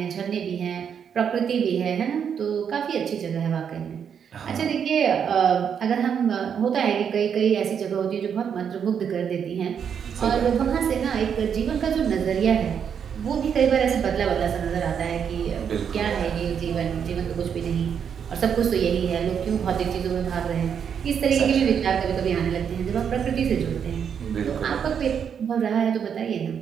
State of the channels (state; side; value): quieter; left; 7.6 dB